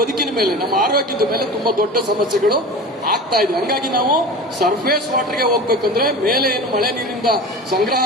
ಮೇಲೆ, ನಮ್ಮ ಆರೋಗ್ಯದ ಮೇಲೆ ತುಂಬಾ ದೊಡ್ಡ ಸಮಸ್ಯೆಗಳು ಆಗ್ತಾ ಇದೆ. ಹಂಗಾಗಿ ನಾವು ಸರ್ಫೇಸ್ ವಾಟರ್ಗೆ ಹೋಗ್ಬೇಕಂದ್ರೆ ಮೇಲೆ ಏನು ಮಳೆ ನೀರಿಂದ ಸಂಗ್ರಹ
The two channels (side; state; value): both; normal; correlation 0.32